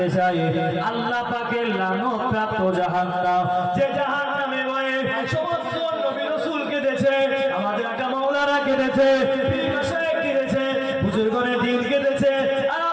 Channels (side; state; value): both; identical; correlation 1.00